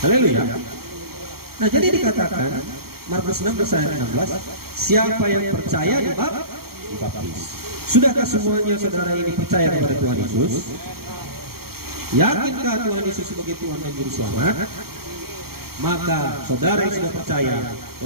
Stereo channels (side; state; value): left; late; 0.94 ms